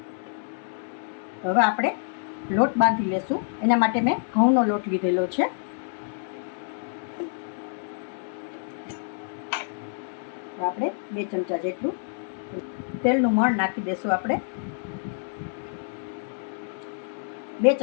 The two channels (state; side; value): silent; right; digital silence